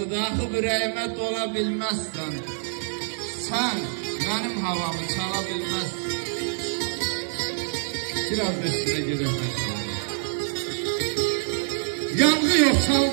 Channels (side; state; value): left; silent; 61 dB below the other